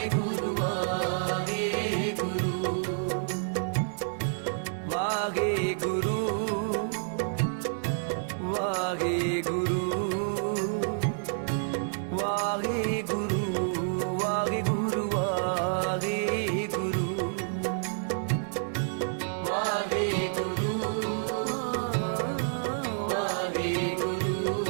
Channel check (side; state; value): left; silent; digital silence